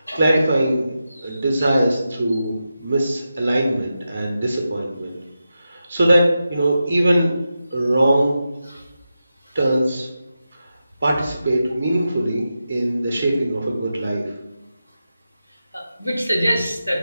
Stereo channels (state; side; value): inverted; both; correlation -0.90